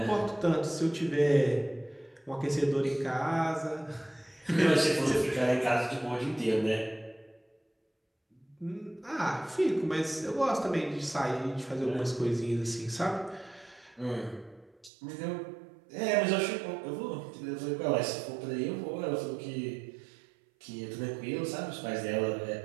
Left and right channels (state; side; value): drops out; left; at 14.9 s